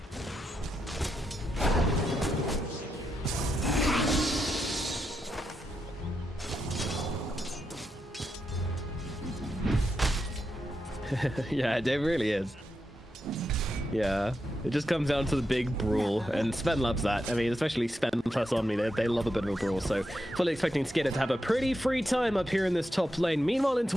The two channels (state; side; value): normal; both; correlation 0.85